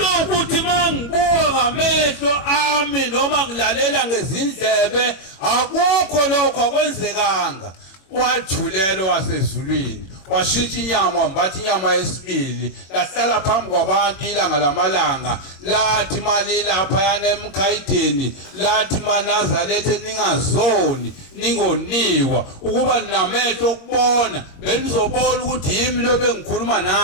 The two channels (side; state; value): right; late; 21 ms